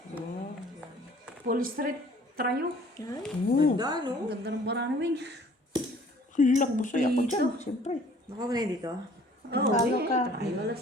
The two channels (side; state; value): both; normal; correlation 0.54